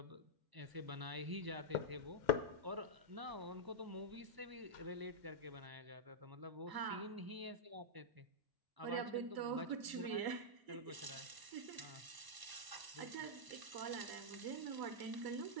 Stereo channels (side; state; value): left; late; 1.0 ms